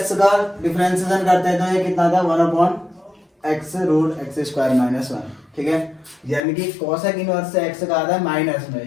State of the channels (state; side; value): drops out; right; at 6.4 s